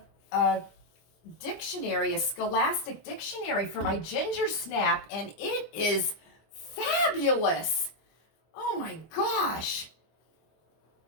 a dictionary, a scholastic dictionary for my ginger snap, and it is fabulous. Oh my gosh.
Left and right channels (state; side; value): late; right; 25 ms